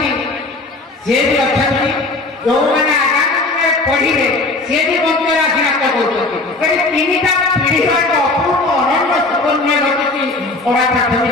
से भी अछंती जो माने आगामी में पढिले से भी मंत्र आशीर्वाद करछंती करी तीनटा पीढ़ी का अपूर्व अनन्य सुकन्या रचिति ओरा प्राथमिक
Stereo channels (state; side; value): quieter; right; 3.2 dB